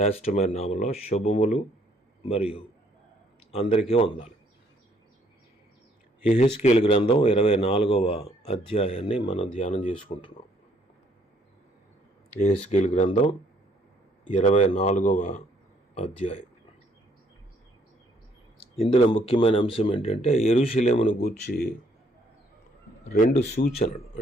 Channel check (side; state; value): both; normal; correlation 0.66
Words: నామంలో శుభములు మరియు అందరికీ వందనాలు. యెహెజ్కేలు గ్రంథం 24వ అధ్యాయాన్ని మనం ధ్యానం చేసుకుంటున్నాం. యెహెజ్కేలు గ్రంథం 24వ అధ్యాయం. ఇందులో ముఖ్యమైన అంశం ఏంటంటే యెరూషలేమును గూర్చి 2 సూచనలు